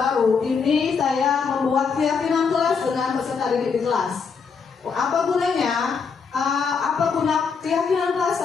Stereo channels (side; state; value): right; quieter; 5.6 dB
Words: ini saya membuat keyakinan kelas dengan peserta didik di kelas. Apa gunanya? Apa guna keyakinan kelas